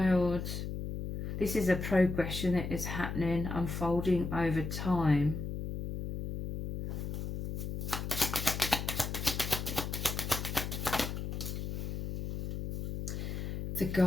This is a progression that is happening, unfolding over time. The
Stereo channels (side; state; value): left; noise; hum, 4 dB below the sound